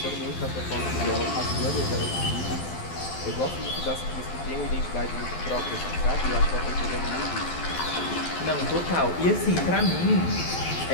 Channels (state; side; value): late; right; 12 ms